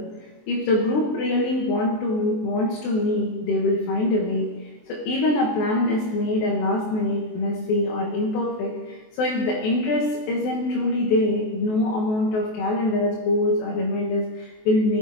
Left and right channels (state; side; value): late; right; 23 ms